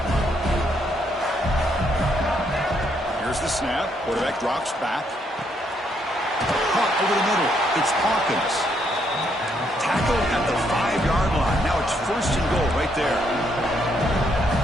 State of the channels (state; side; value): normal; both; correlation 0.73